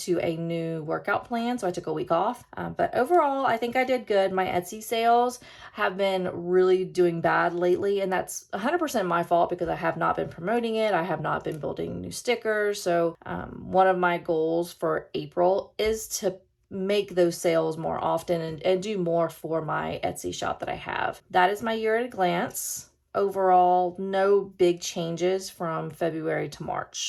a new workout plan, so I took a week off. But overall, I think I did good. My Etsy sales have been really doing bad lately, and that's 100% my fault because I have not been promoting it. I have not been building new stickers. So one of my goals for April is to make those sales more often and do more for my Etsy shop that I have. That is my year at a glance. Overall, no big changes from February to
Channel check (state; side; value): identical; both; correlation 1.00